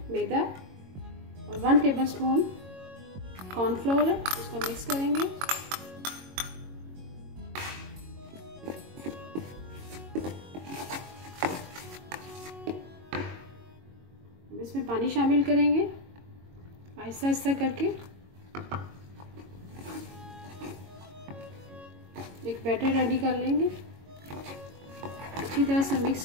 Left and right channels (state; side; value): late; left; 22 ms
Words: मैदा और 1 टेबल स्पून कॉर्नफ्लोर है, उसको मिक्स करेंगे। इसमें पानी शामिल करेंगे आहिस्ता आहिस्ता करके। एक बैटर रेडी कर लेंगे, अच्छी तरह से मिक्स